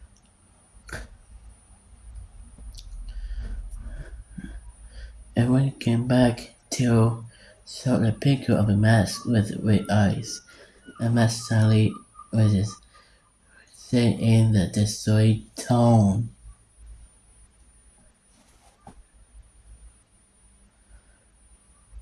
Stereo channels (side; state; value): both; identical; correlation 1.00